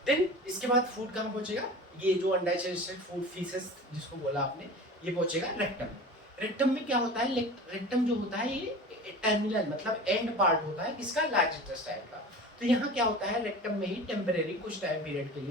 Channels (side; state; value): both; normal; correlation 0.36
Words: देन इसके बाद फूड कहाँ पहुंचेगा, ये जो अनडाइजेस्टेड फूड फीसेस जिसको बोला आपने, ये पहुंचेगा रेक्टम। रेक्टम में क्या होता है, रेक्टम जो होता है ये टर्मिनल मतलब एंड पार्ट होता है किसका, लार्ज इंटेस्टाइन का। तो यहाँ क्या होता है, रेक्टम में ही टेम्परेरी कुछ टाइम पीरियड के